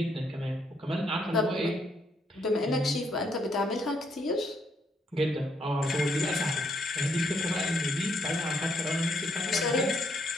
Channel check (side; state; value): both; normal; correlation 0.73